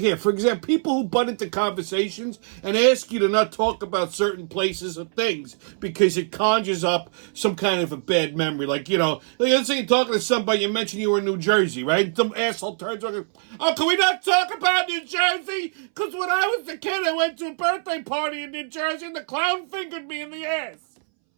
for example, people who butt into conversations and ask you to not talk about certain places or things because it conjures up some kind of a bad memory. Like, let's say you're talking to somebody, you mentioned you were in New Jersey, right? Some asshole turns around, oh, can we not talk about New Jersey? Because when I was a kid, I went to a birthday party in New Jersey and the clown fingered me in the ass.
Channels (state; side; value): silent; left; 63 dB below the other